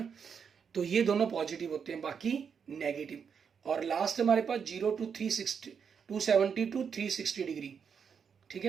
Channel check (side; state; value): left; quieter; 6.7 dB